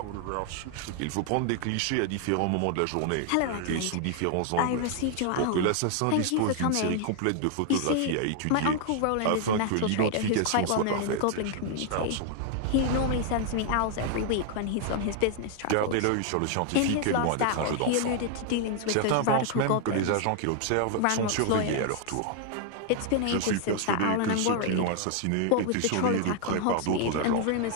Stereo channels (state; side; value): different; both; correlation 0.00